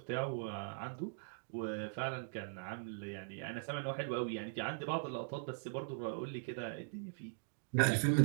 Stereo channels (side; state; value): left; silent; digital silence